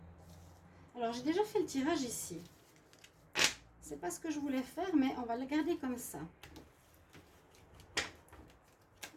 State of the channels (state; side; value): identical; both; correlation 1.00